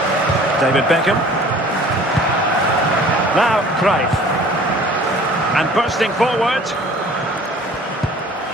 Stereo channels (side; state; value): both; normal; correlation 0.49